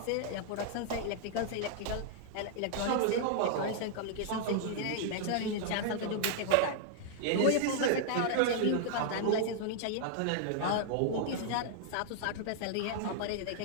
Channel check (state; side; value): different; both; correlation -0.01